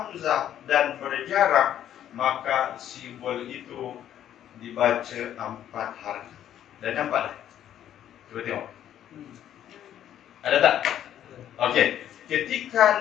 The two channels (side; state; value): right; quieter; 10.8 dB